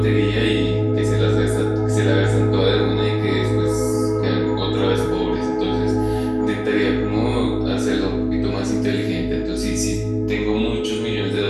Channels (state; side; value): identical; both; correlation 1.00